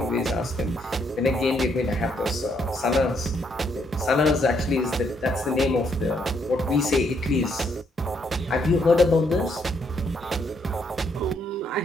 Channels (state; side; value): normal; both; correlation 0.73